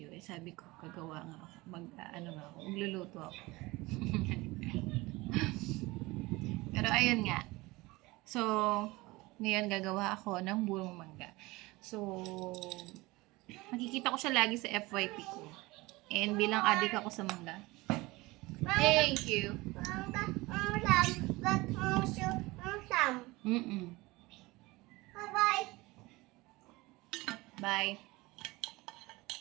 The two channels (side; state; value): left; quieter; 21.7 dB